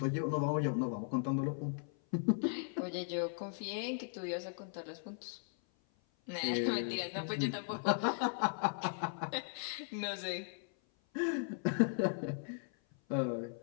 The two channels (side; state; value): right; silent; 53 dB below the other